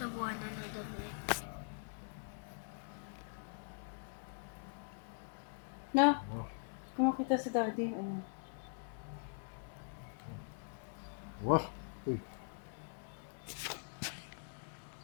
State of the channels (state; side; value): silent; right; digital silence